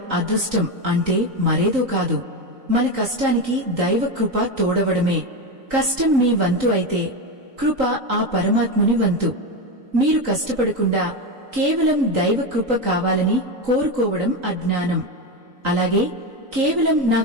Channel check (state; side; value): late; left; 3.9 ms